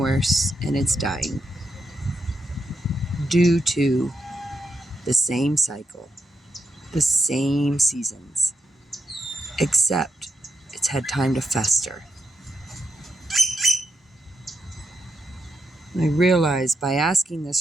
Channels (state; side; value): normal; both; correlation 0.83